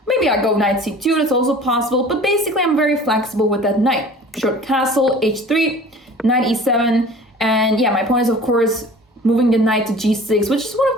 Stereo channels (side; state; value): both; normal; correlation 0.44